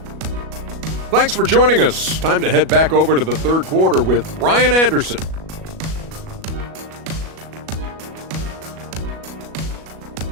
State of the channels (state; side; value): late; left; 37 ms